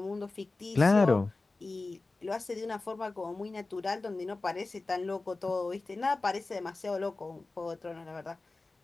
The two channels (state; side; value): quieter; right; 3.4 dB